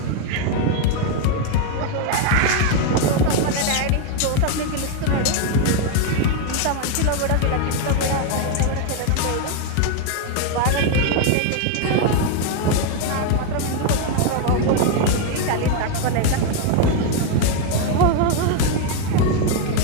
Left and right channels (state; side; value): different; both; correlation 0.01